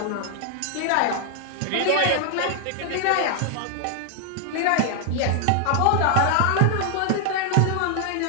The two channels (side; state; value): both; different; correlation 0.00